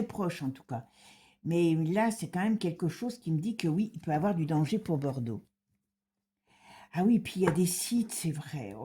proche en tout cas. Mais là, c'est quand même quelque chose qui me dit que oui, il peut y avoir du danger pour Bordeaux. Ah oui, puis il y a des sites, c'est vrai.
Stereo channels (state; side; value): identical; both; correlation 1.00